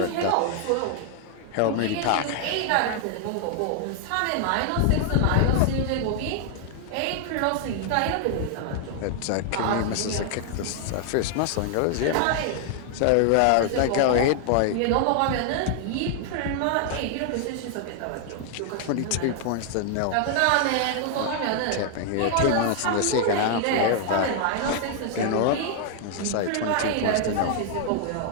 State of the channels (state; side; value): different; both; correlation 0.00